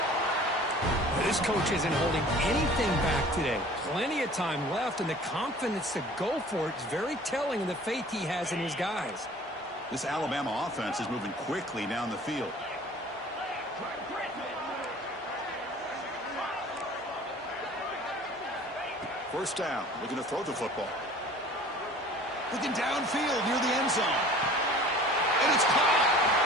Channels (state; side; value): normal; both; correlation 0.47